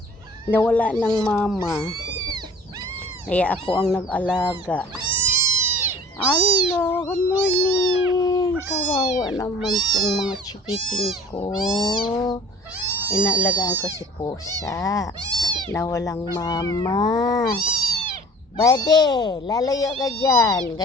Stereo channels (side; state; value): both; normal; correlation 0.49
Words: Nawala ng mama. Kaya ako ang nag-alaga. Hello, good morning. Kawawa naman tong mga chikiting ko. Inaalagaan ko si pusa na walang mama. Bade, lalayo ka dyan.